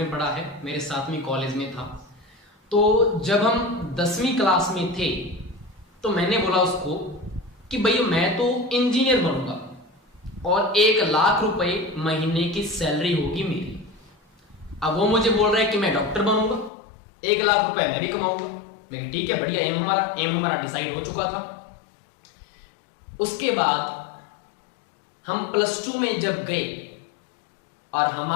पढ़ा है, मेरे साथ में कॉलेज में था। तो जब हम 10वीं क्लास में थे तो मैंने बोला उसको कि भैया मैं तो इंजीनियर बनूंगा और 1 लाख रुपए महीने की सैलरी होगी मेरी। अब वो मुझे बोल रहा है कि मैं डॉक्टर बनूंगा, 1 लाख रुपए मैं भी कमाऊंगा। मैं ठीक है, बढ़िया, एम हमारा डिसाइड हो चुका था। उसके बाद हम +2 में जब गए और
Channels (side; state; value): right; drops out; at 16.7 s